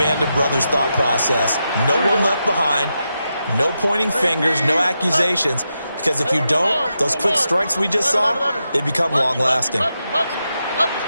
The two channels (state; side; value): inverted; both; correlation -0.87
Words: of Brothers thought process. No one left behind, no pointing fingers, no accusations, because if you don't, those quick strikes we just saw, they become long-lasting.